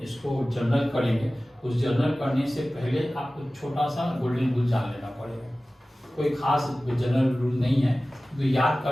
इसको जर्नल करेंगे। उस जर्नल करने से पहले आपको छोटा सा गोल्डन रूल जान लेना पड़ेगा। कोई खास जनरल रूल नहीं है, तो याद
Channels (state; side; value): normal; both; correlation 0.97